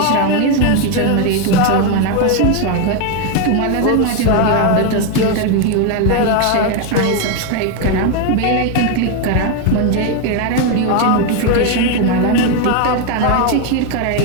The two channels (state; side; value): different; both; correlation 0.01